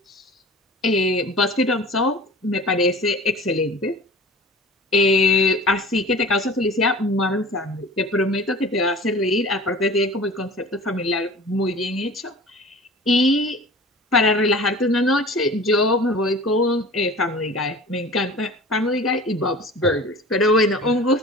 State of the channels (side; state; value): both; normal; correlation 0.40